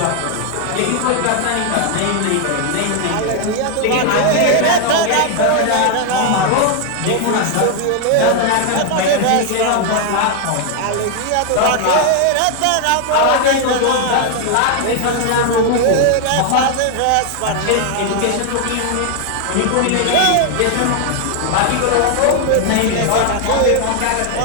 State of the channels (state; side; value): different; both; correlation 0.00